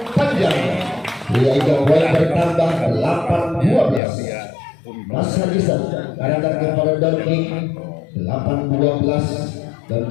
panjang. Sehingga poin bertambah 8-12. Mas Haji sebarkan kepada Don King 8-12. Dan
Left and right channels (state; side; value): drops out; right; at 4.0 s